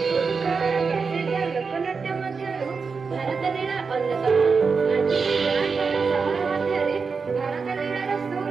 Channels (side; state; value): left; quieter; 5.1 dB